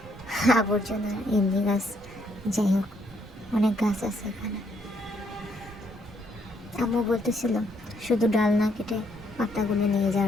আবর্জনা এমনি গাছ। যাই হোক, অনেক গাছ আছে এখানে। আম্মু বলতেছিল শুধু ডাল না কেটে পাতাগুলো নিয়ে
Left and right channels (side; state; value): both; normal; correlation 0.71